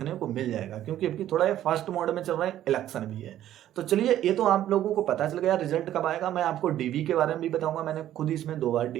को मिल जाएगा। क्योंकि अभी थोड़ा ये फास्ट मोड में चल रहा है, इलेक्शन भी है। तो चलिए, ये तो आप लोगों को पता चल गया रिजल्ट कब आएगा। मैं आपको डीवी के बारे में भी बताऊंगा, मैंने खुद इसमें 2 बार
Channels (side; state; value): left; quieter; 12.3 dB